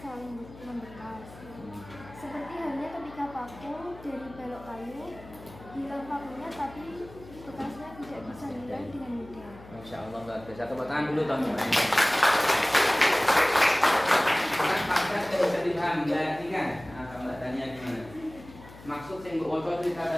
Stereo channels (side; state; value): left; noise; hum, 18 dB below the sound